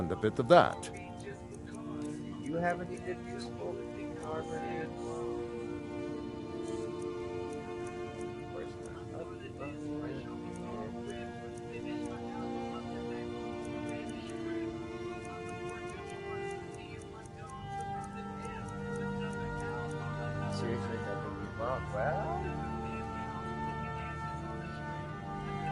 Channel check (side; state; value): both; identical; correlation 1.00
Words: a bit of that. Do you have any good useful armor here? Of course not. Seriously, that would be wrong. Well...